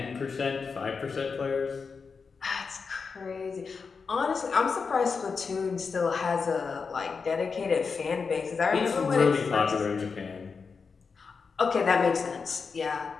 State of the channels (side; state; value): right; quieter; 5.2 dB